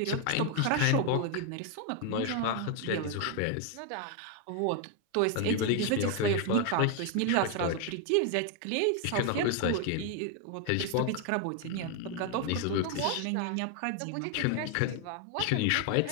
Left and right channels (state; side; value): different; both; correlation 0.01